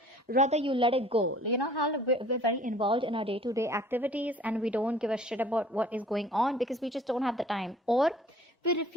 Rather, you let it go. How we're very involved in our day-to-day activities and we don't give a shit about what is going on because we just don't have the time, or we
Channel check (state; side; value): normal; both; correlation 0.51